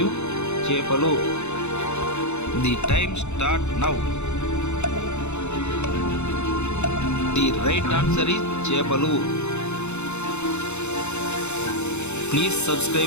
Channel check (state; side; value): late; right; 0.82 ms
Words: చేపలు. The time start now. The right answer is చేపలు. Please